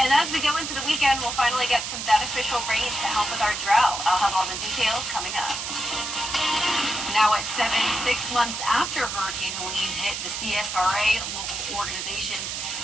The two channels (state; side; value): noise; right; hiss, 4 dB below the sound